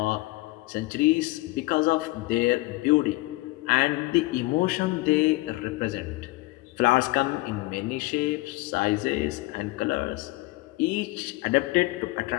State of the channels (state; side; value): quieter; right; 21.4 dB